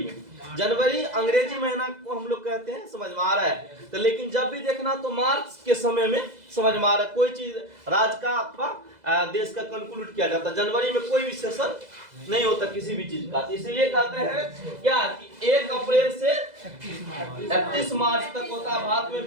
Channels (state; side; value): late; left; 2.0 ms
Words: में। जनवरी अंग्रेजी महीना को हम लोग कहते हैं। समझ में आ रहा है? तो लेकिन जब भी देखना तो मार्च के समय में, समझ में आ रहा है, कोई चीज राज्य का अथवा देश का कंक्लूड किया जाता है। जनवरी में कोई भी सेशन नहीं होता किसी भी चीज का। इसलिए कहते हैं क्या कि 1 अप्रैल से 31 मार्च तक होता है भारत में